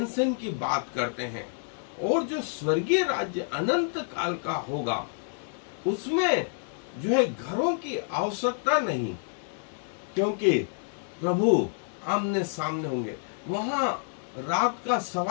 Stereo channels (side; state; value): right; silent; digital silence